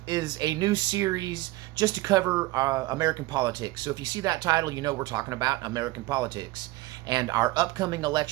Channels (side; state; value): left; quieter; 19.3 dB